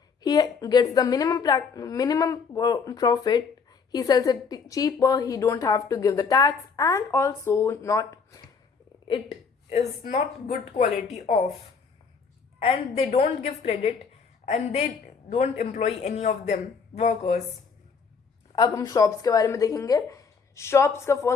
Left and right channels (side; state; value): right; quieter; 5.5 dB